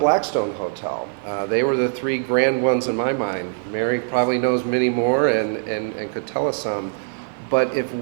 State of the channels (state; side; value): silent; left; 64 dB below the other